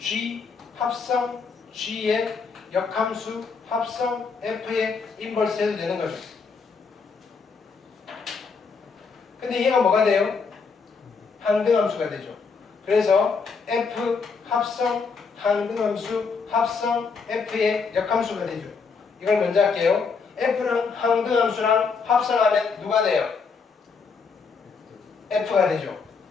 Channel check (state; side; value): quieter; right; 5.1 dB